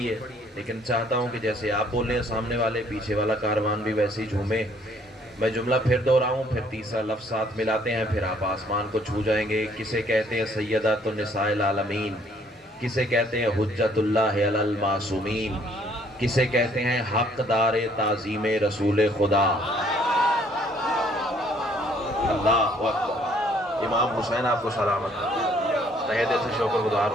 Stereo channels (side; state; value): both; normal; correlation 0.62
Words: ہے، لیکن چاہتا ہوں کہ جیسے آپ بولیں سامنے والے، پیچھے والا کاروان بھی ویسے ہی جھومے۔ میں جملہ پھر دہراؤں، پھر تیسرا لفظ ساتھ ملاتے ہیں، پھر آپ آسمان کو چھو جائیں گے۔ کسے کہتے ہیں سیدۃ النساء العالمین، کسے کہتے ہیں حجت اللہ علی المعصومین، کسے کہتے ہیں حقدار تعظیم رسول خدا۔ اللہ اکبر۔ امام حسین آپ کو سلامت، تہہ دل سے شکر گزار